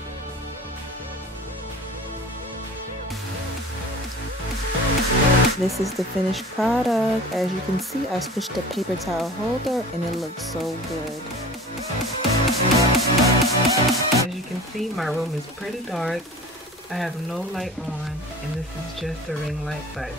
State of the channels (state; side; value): normal; both; correlation 0.39